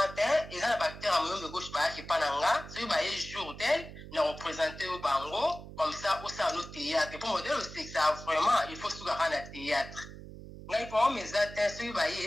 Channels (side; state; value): right; noise; hum, 14 dB below the sound